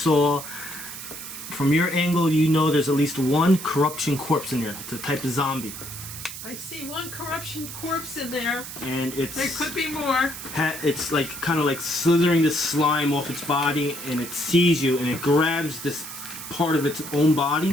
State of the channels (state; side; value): noise; right; hiss, 10 dB below the sound